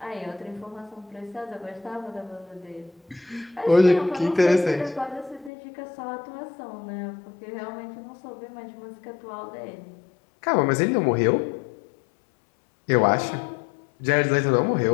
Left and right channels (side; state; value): right; drops out; at 5.5 s